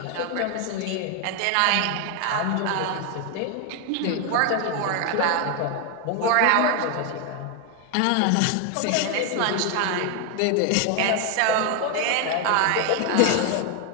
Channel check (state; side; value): different; both; correlation 0.01